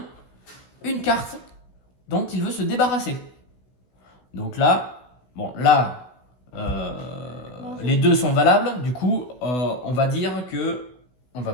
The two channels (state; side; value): late; right; 16 ms